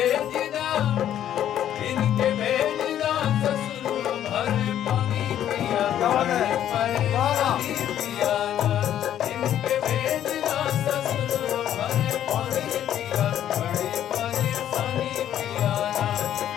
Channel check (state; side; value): quieter; right; 11.0 dB